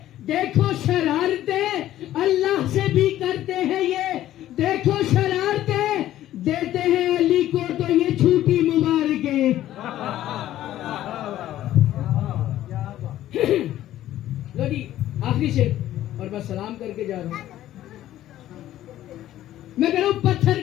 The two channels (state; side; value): quieter; right; 13.3 dB